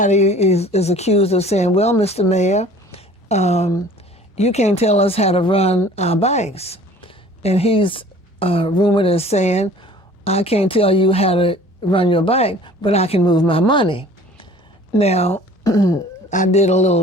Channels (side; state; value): both; normal; correlation 0.49